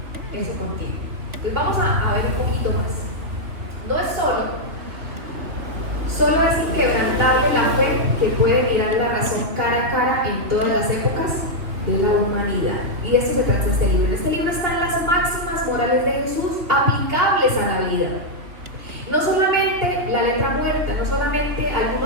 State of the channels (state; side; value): late; left; 2.7 ms